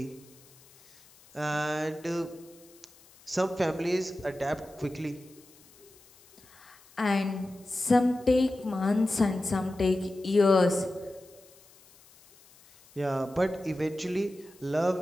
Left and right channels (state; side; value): noise; left; hiss, 26 dB below the sound